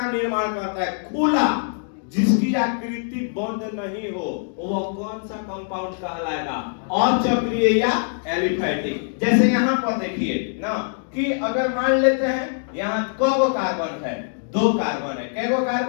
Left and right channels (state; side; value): silent; right; digital silence